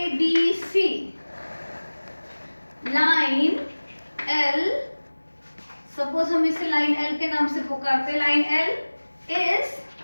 line L, सपोज हम इसे लाइन L के नाम से पुकारते हैं। Line L is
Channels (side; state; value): both; inverted; correlation -1.00